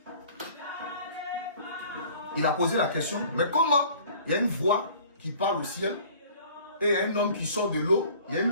Il a posé la question, mais comment il y a une voix qui parle au ciel et il y a un homme qui sort de l'eau, il y a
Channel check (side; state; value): both; inverted; correlation -0.50